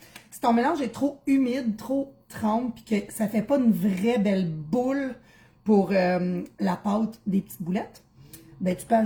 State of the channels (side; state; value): both; identical; correlation 1.00